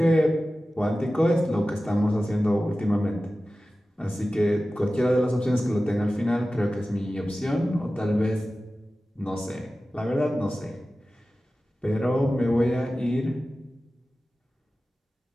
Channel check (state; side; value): normal; both; correlation 0.95